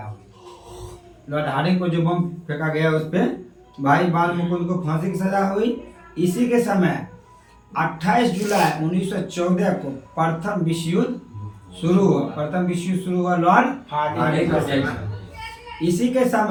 लॉर्ड हार्डिंग को जो बम फेंका गया उस पे भाई बाल मुकुंद को फांसी की सजा हुई। इसी के समय 28 जुलाई 1914 को प्रथम विश्व युद्ध शुरू हुआ। Lord Hardinge. इसी के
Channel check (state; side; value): identical; both; correlation 1.00